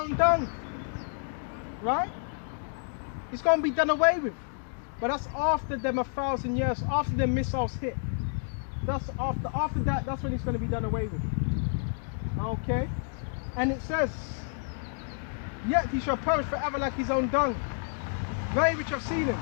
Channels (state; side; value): silent; right; 58 dB below the other